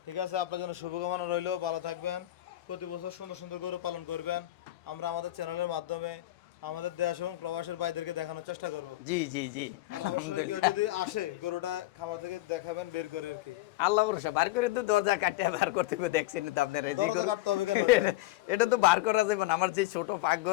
ঠিক আছে আপনার জন্য শুভকামনা রইলো ভালো থাকবেন প্রতি বছর সুন্দর সুন্দর গরু পালন করবেন আমরা আমাদের চ্যানেলের মাধ্যমে আমাদের দেশ এবং প্রবাসের ভাইদেরকে দেখানোর চেষ্টা করবো জি জি জি অবশ্যই কেউ যদি আসে গরুটা খামার থেকে দেখাবেন বের করে আর কি আল্লাহ ভরসা বার করে তো দরজা কাটে বার করতে হবে দেখছেন তো আপনারা যে দরজা গরু- কাটতে হবে কেন? এটা তো বার করা যাবে না আমার যে ছোট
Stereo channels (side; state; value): right; quieter; 16.6 dB